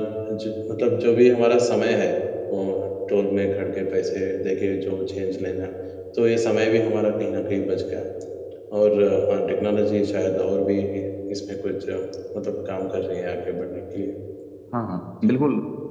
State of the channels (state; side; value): identical; both; correlation 1.00